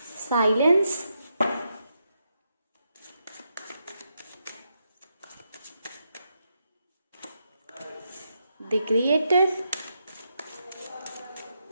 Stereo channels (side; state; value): both; inverted; correlation -0.82